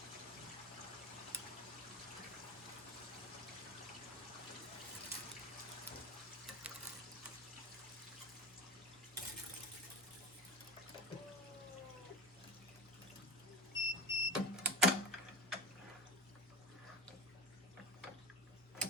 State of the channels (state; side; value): noise; left; hum, 26 dB below the sound